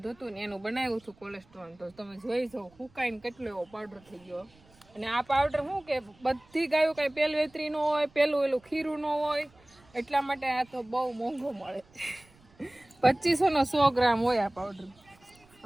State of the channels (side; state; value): right; noise; rumble, 29 dB below the sound